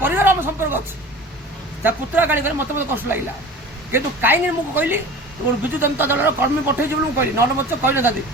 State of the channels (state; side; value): normal; both; correlation 0.38